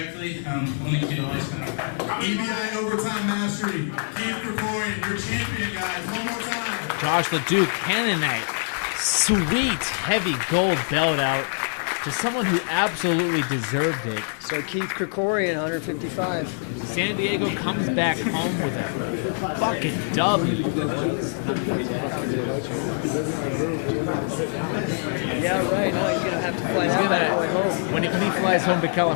only kid always come out. EBI Overtime Mastery. Keith Krikorian, your champion, guys. One more time. Josh Leduc handing that sweet, heavy gold belt out to someone who absolutely deserved it. So Keith Krikorian, 155. San Diego comes back home with a fucking W, boys. Yeah, right. No, he's gonna have to fly that bad boy home. When he flies home to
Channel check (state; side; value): silent; right; 62 dB below the other